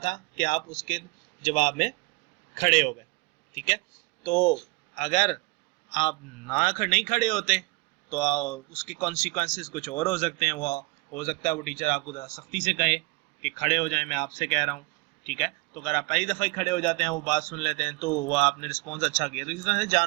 कि आप उसके जवाब में खड़े हो गए। ठीक है, तो अगर आप नहीं खड़े होते तो उसके कॉन्सिक्वेंसेस कुछ और हो सकते हैं। वो हो सकता है वो टीचर आपको ज़रा सख्ती से कहे कि खड़े हो जाएं, मैं आपसे कह रहा हूँ। ठीक है, तो अगर आप पहली दफ़ा ही खड़े हो जाते हैं, वो बात सुन लेते हैं, तो वो आपने रिस्पॉन्स अच्छा किया। तो इस तरह से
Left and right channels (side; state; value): left; quieter; 25.4 dB